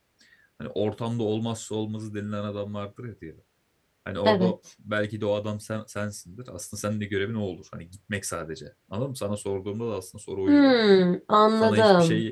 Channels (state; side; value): identical; both; correlation 1.00